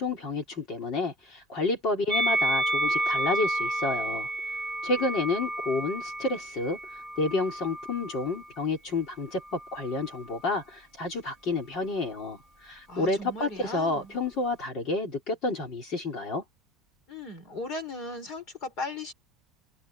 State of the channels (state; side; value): normal; both; correlation 0.39